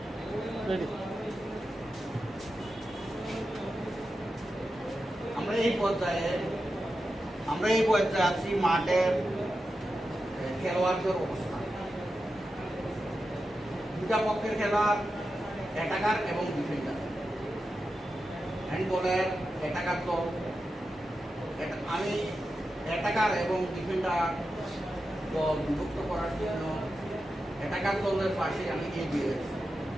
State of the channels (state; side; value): normal; both; correlation 0.90